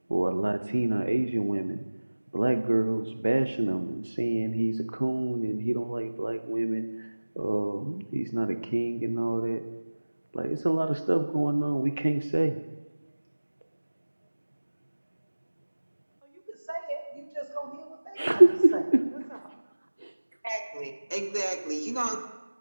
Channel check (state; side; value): inverted; both; correlation -1.00